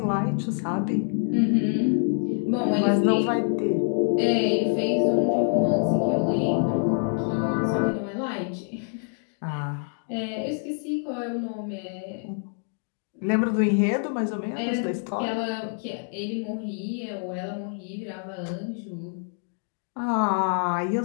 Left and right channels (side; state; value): right; silent; 56 dB below the other